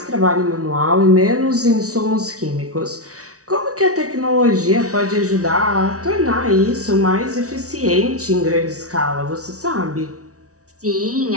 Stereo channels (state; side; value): late; left; 0.66 ms